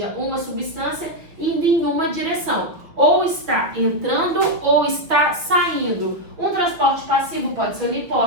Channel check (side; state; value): left; late; 5.9 ms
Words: uma substância indo em uma direção. Ou está entrando ou está saindo. Um transporte passivo pode ser